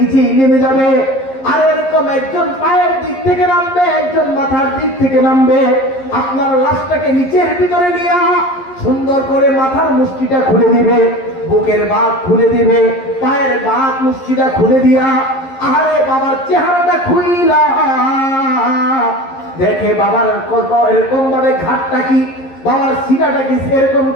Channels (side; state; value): right; late; 11 ms